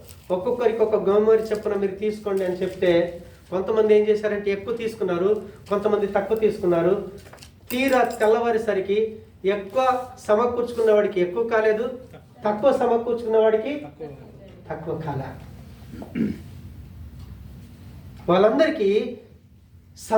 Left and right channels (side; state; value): both; identical; correlation 1.00